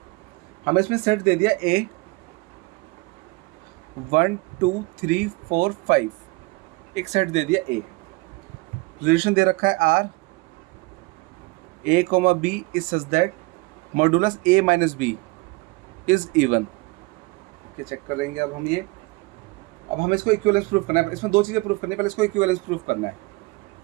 हमें इसमें सेट दे दिया ए 1 2 3 4 5, एक सेट दे दिया ए, रिलेशन दे रखा है R, A comma B is such that modulus A minus B is even. Check करेंगे अब हम ये, अब हमें इसको इक्विवेलेंस प्रूफ करना है, इसमें दो चीज़ें प्रूफ करनी है, पहले इसको इक्विवेलेंस प्रूफ करना है।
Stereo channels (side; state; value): left; quieter; 24.2 dB